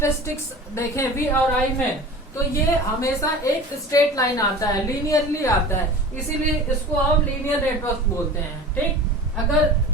देखें V और I में, तो ये हमेशा एक स्ट्रेट लाइन आता है, लीनियरली आता है, इसीलिए इसको हम लीनियर नेटवर्क बोलते हैं। ठीक, अगर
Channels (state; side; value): normal; both; correlation 0.37